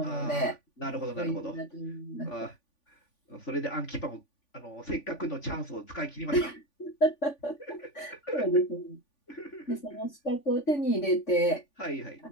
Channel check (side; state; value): right; late; 3.5 ms